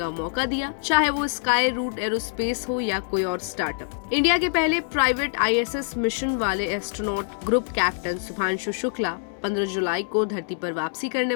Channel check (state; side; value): silent; right; digital silence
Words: मौका दिया, चाहे वो स्काई रूट एरोस्पेस हो या कोई और स्टार्टअप। इंडिया के पहले प्राइवेट ISS मिशन वाले astronaut group captain Shubhanshu Shukla 15 जुलाई को धरती पर वापसी करने